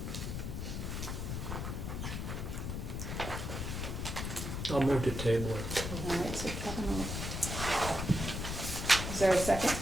I'll move to table it. All right, so Kevin will. Is there a second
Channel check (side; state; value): left; noise; rumble, 4 dB below the sound